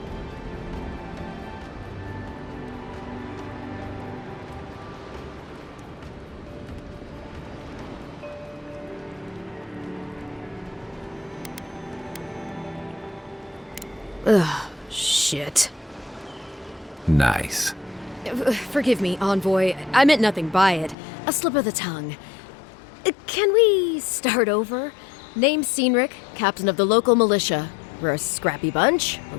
Ugh, shit. Nice. Forgive me, Envoy. I meant nothing by it. A slip of the tongue. Can we start over? Name's Cynric, captain of the local militia. We're a scrappy bunch,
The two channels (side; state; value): right; drops out; at 21.0 s